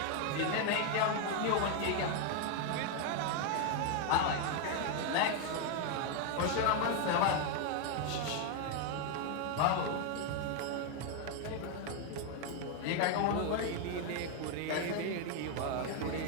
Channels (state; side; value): different; both; correlation 0.01